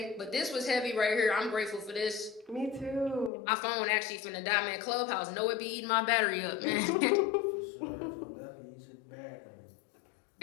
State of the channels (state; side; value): drops out; right; at 3.3 s